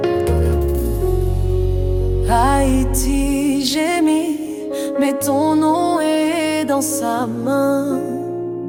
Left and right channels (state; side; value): identical; both; correlation 1.00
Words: père. Haïti gémit, mais ton nom est dans sa main.